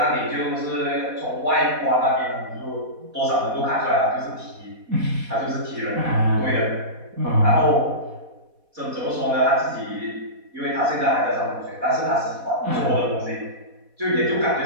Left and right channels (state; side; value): late; left; 4.1 ms